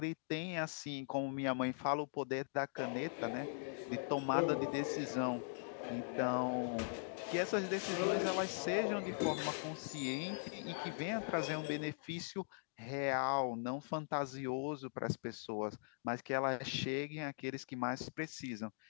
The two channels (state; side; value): silent; right; digital silence